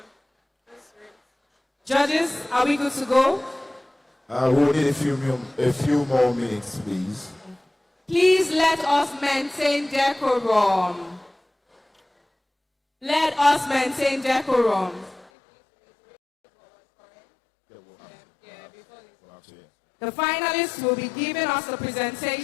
Judges, are we good to go? We'll need a few more minutes, please. Please let us maintain decorum. Let us maintain decorum. The finalists will be giving us a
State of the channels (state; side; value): drops out; right; at 15.3 s